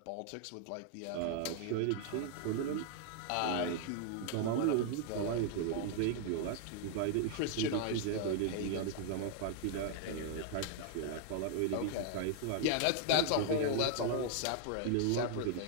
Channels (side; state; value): both; different; correlation 0.00